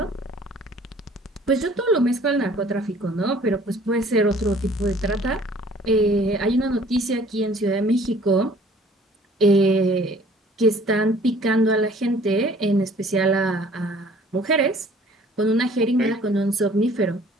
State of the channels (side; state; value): both; normal; correlation 0.53